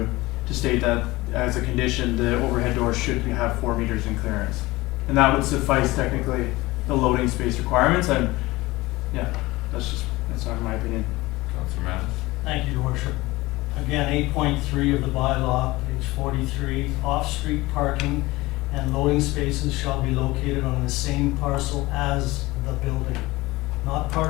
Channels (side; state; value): right; quieter; 20.4 dB